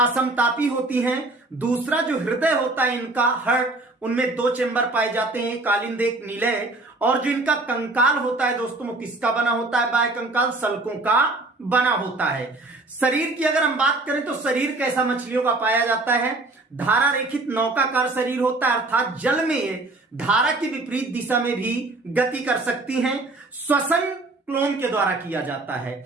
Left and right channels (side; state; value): left; quieter; 3.0 dB